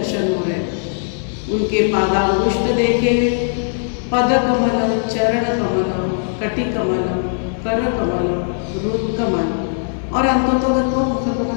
हो रहे हैं। उनके पादांगुष्ठ देखे, पद कमलम, चरण कमलम, कटि कमलम, कर कमलम, रुद कमल और अंतोतोगत्वा मुख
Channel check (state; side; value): silent; right; digital silence